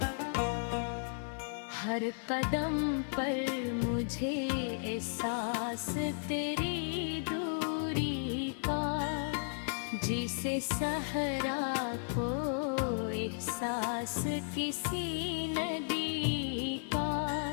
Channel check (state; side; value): silent; right; digital silence